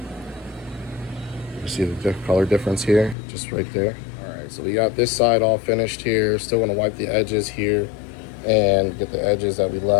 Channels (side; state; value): right; drops out; at 3.2 s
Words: You see the color difference here, just right there. All right, so we got this side all finished here. Still gonna wipe the edges here and get the edges that we